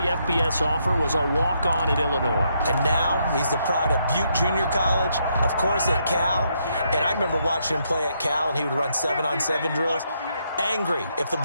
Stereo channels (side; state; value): both; inverted; correlation -0.76